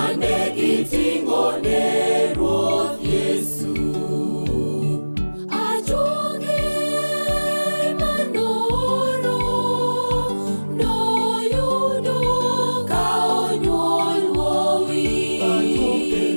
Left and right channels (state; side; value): inverted; both; correlation -1.00